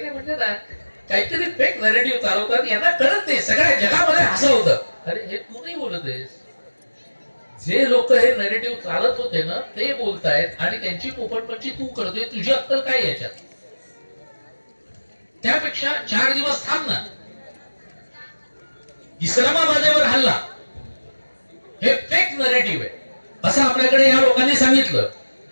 म्हणजे ना काहीतरी फेक नॅरेटिव्ह चालवतात, यांना कळत नाही, सगळ्या जगामध्ये हसवतं. अरे हे तू नाही बोलत आहेस, जे लोक हे नॅरेटिव्ह चालत होते ना ते बोलतायत आणि त्यांची पोपटपंची तू करतोय. तुझी अक्कल काय याच्यात? त्यापेक्षा 4 दिवस थांब ना. इस्लामाबादेवर हल्ला हे फेक नॅरेटिव्ह आहे असं आपल्याकडे या लोकांनी सांगितलं.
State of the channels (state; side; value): inverted; both; correlation -1.00